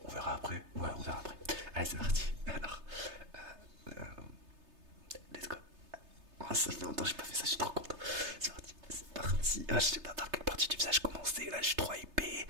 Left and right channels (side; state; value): left; late; 3.3 ms